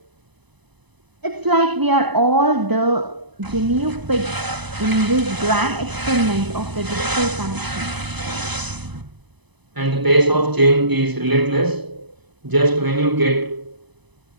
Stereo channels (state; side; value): late; left; 0.99 ms